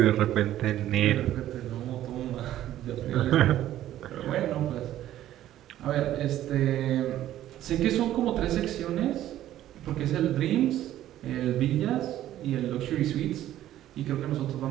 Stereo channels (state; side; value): quieter; left; 12.9 dB